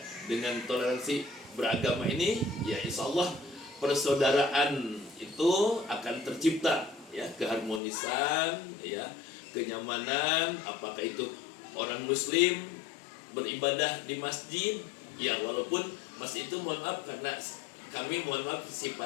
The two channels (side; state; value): right; drops out; at 7.8 s